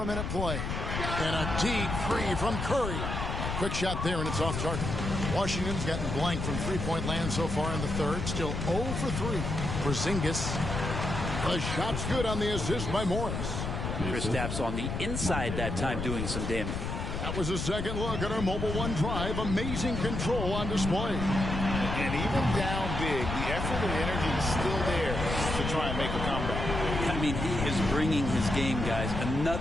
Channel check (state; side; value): noise; left; rumble, 3 dB below the sound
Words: a minute play. And a deep 3 from Curry. Quick shot there, and it's off target. Washington's gotten blank from three-point land so far in the third. Still 0 for 3. Porzingis. The shot's good on the assist by Morris. Kristaps on the inside that time doing some damage. That was a second look at our Mobile One drive. Amazing control on display. And even down big, the effort and energy is still there to try and make a comeback. I mean, he is bringing his game, guys.